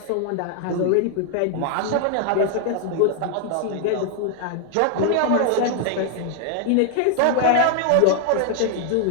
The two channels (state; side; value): different; both; correlation 0.00